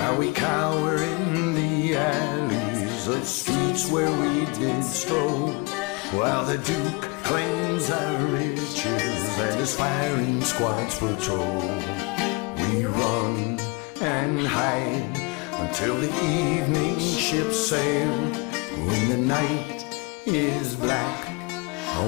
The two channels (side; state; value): right; quieter; 29.0 dB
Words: we cower in the alleys of streets where we did stroll, while the Duke claims our riches and his firing squads patrol. We run and hide until the evening ships sail. When the night is black,